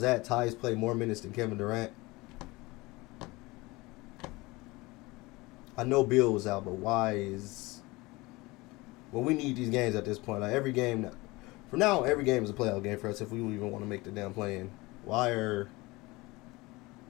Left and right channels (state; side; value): quieter; right; 22.4 dB